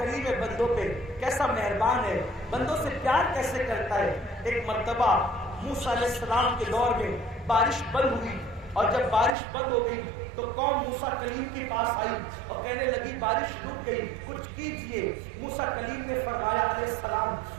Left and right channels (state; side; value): drops out; left; at 9.3 s